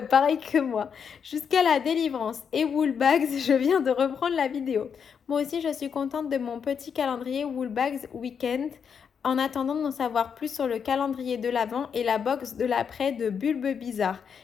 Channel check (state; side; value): quieter; right; 6.9 dB